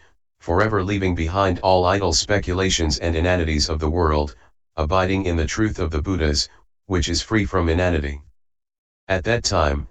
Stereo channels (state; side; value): identical; both; correlation 1.00